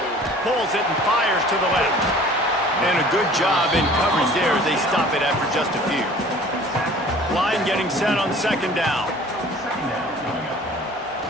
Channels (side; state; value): both; normal; correlation 0.48